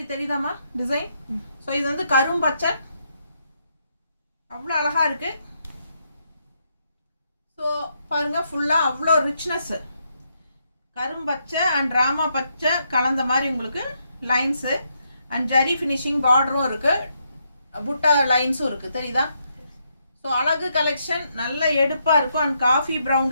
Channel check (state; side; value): inverted; both; correlation -0.78